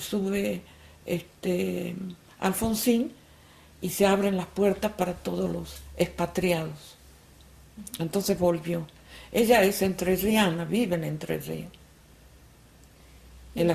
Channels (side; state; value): both; identical; correlation 1.00